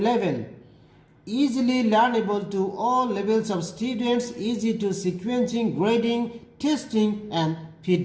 Easily learnable to all levels of students, easy to sequencing, grading, testing and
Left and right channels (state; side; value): identical; both; correlation 1.00